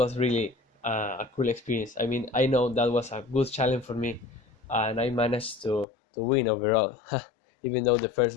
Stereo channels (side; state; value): right; drops out; at 5.9 s